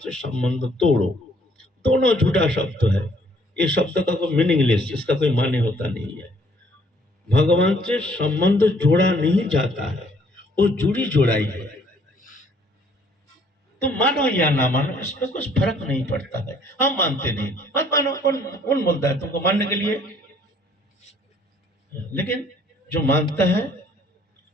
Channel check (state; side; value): normal; both; correlation 0.62